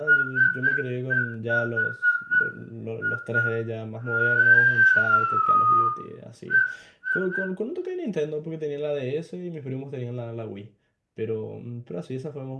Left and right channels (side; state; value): both; identical; correlation 1.00